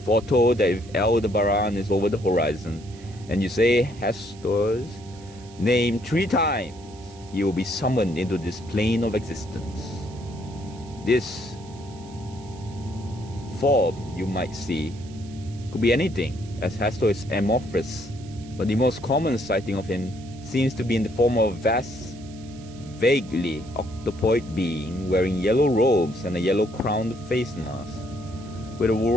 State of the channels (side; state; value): right; noise; hiss, 23 dB below the sound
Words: that if Aldebaran is over the horizon, and you say Hastur's name 3 times, he will be summoned into this plane of existence. This form, you might see, could be anything, as Hastur is amorphous, but the most common sighting of him seems to be in the form of a vast, vaguely octopoid being wearing yellow robes and a yellow-crowned face mask, with a